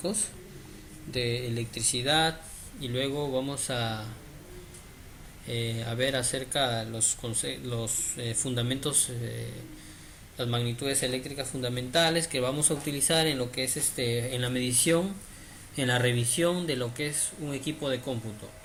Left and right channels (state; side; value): identical; both; correlation 1.00